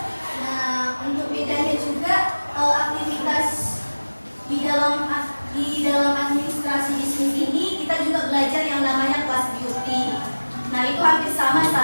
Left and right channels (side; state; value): both; inverted; correlation -1.00